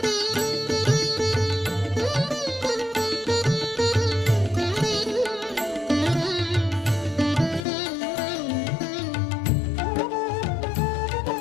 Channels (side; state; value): right; drops out; at 7.7 s